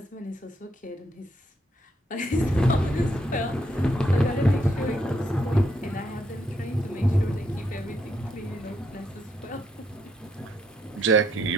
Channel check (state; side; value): normal; both; correlation 0.76